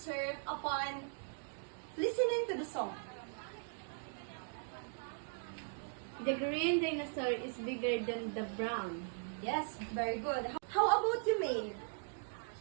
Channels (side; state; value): left; silent; digital silence